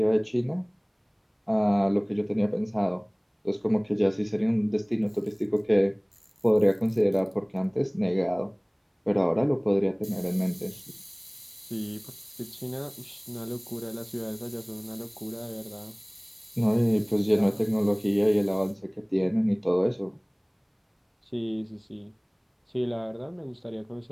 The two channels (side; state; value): both; identical; correlation 1.00